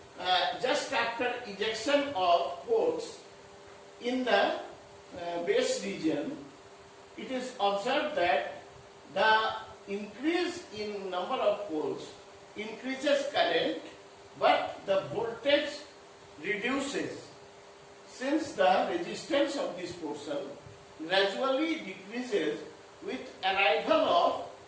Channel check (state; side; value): identical; both; correlation 1.00